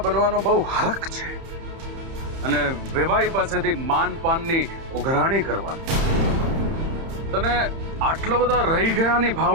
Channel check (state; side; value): late; left; 30 ms